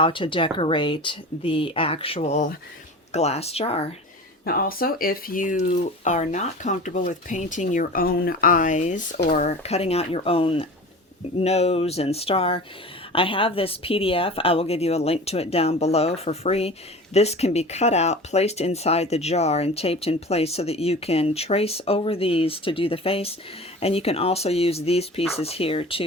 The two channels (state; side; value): normal; both; correlation 0.36